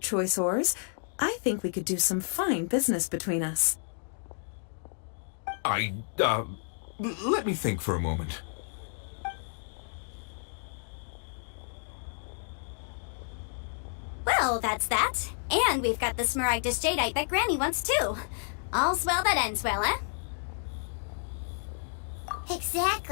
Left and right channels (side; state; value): right; silent; digital silence